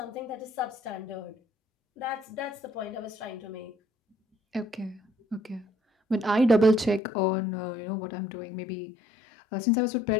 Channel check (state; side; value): drops out; right; at 7.0 s